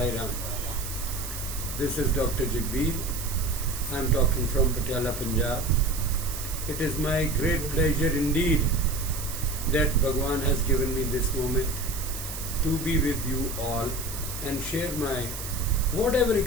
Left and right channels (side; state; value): right; noise; hiss, 8 dB below the sound